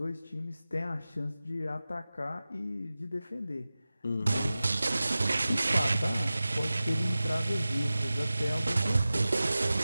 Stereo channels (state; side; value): inverted; both; correlation -0.96